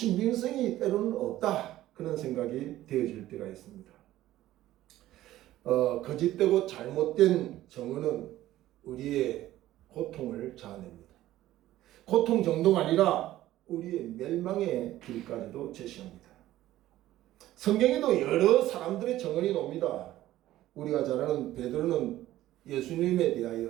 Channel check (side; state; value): left; quieter; 14.6 dB